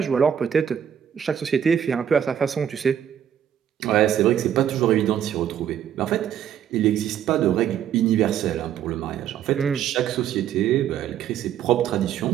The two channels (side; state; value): left; quieter; 9.5 dB